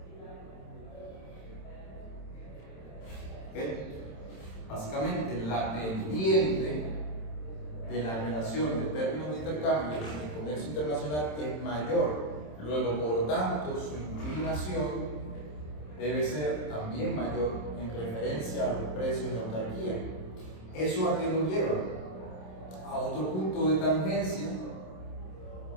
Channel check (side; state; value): right; late; 27 ms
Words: básicamente la pendiente de la relación de términos de intercambio en el comercio internacional es mayor, luego por tanto su inclinación debe ser también mayor en referencia a los precios de autarquía. ¿Eso a qué nos lleva? A otro punto de tangencia,